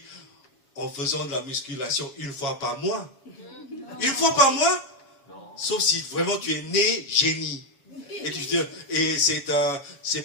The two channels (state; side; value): late; right; 7.1 ms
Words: en faisant de la musculation une fois par mois. Une fois par mois? Non. Sauf si vraiment tu es né génie. Et